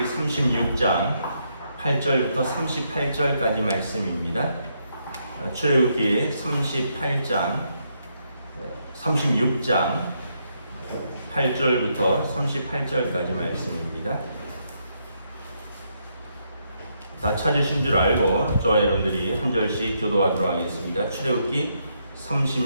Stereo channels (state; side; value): inverted; both; correlation -0.77